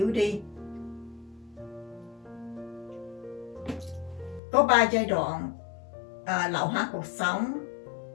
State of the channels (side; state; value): right; drops out; at 4.4 s